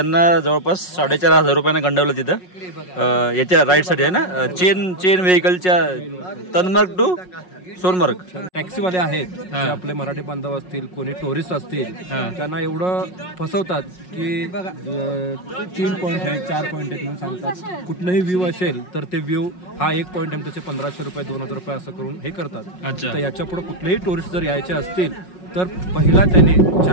जवळपास 4,500 रुपयांना गंडवलं तिथं याच्या राईडसाठी आहे ना, चेन व्हेकलच्या तनमार्ग टू सोनमार्ग. टॅक्सीवाले आहेत जे आपले मराठी बांधव असतील, कोणी टुरिस्ट असतील, त्यांना एवढं फसवतात की 3 पॉईंट आहे 4 पॉईंट आहेत म्हणून सांगतात. कुठलंही व्ह्यू असेल तर ते व्ह्यू हा 1 पॉईंट आहे त्याचे 1,500 रुपये 2,000 रुपये असं करून हे करतात. तर याच्या पुढे कुठलेही टुरिस्ट जर यायचे असतील तर पहिला त्यांनी जे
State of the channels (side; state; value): right; late; 5.5 ms